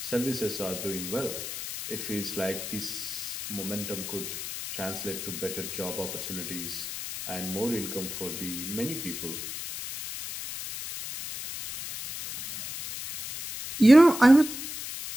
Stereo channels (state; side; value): noise; left; hiss, 7 dB below the sound